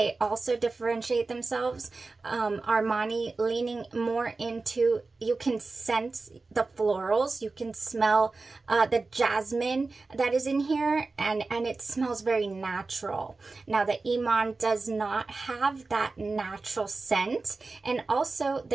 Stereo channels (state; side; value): quieter; left; 3.7 dB